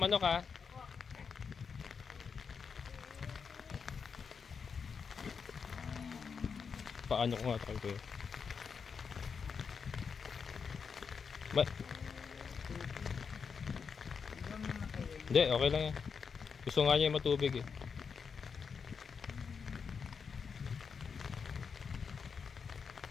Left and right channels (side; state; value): right; quieter; 5.9 dB